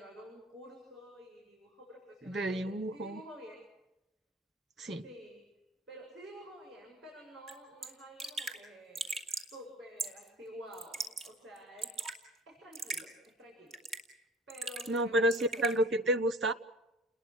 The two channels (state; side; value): normal; both; correlation 0.42